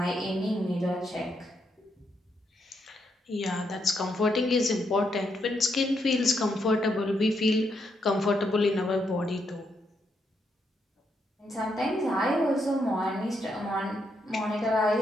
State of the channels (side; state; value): both; normal; correlation 0.78